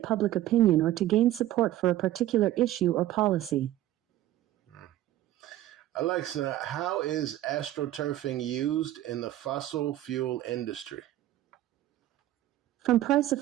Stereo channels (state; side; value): quieter; left; 13.9 dB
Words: public opinion or to gain support for a particular issue or policy. Alexa, how is astroturfing used in the fossil fuel industry? From